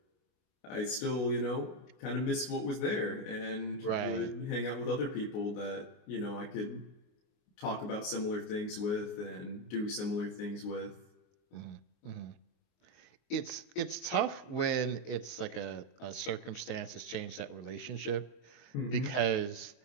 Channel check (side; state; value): right; late; 29 ms